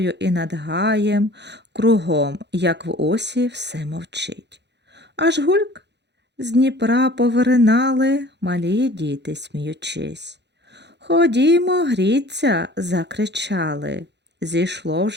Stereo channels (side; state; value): left; late; 0.50 ms